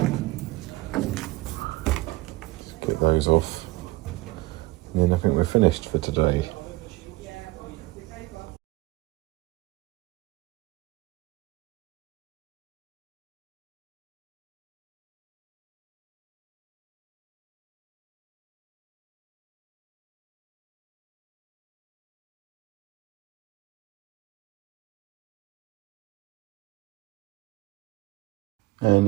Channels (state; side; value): quieter; left; 20.5 dB